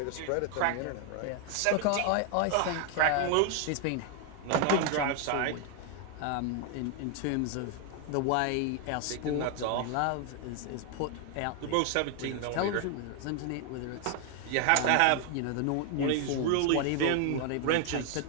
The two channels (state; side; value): different; both; correlation 0.00